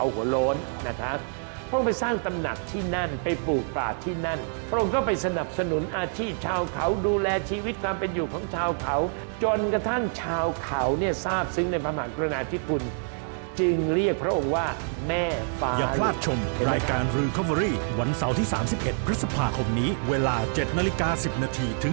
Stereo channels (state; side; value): silent; left; 57 dB below the other